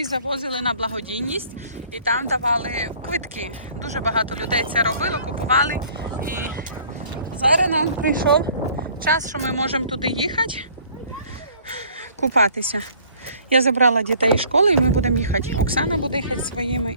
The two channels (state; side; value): inverted; both; correlation -0.55